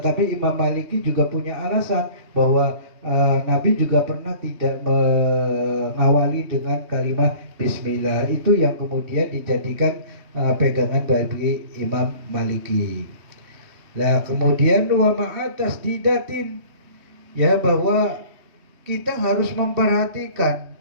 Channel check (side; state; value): left; late; 3.2 ms